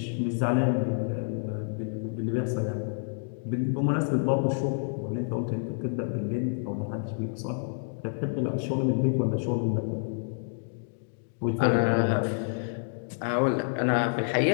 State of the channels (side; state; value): right; silent; digital silence